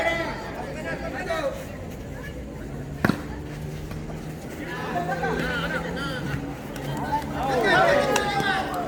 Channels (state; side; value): identical; both; correlation 1.00